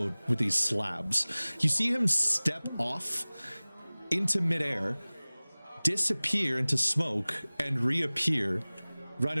with these slabs. You see him step off into midair, disappear into smoke, and reappear right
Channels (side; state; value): both; inverted; correlation -1.00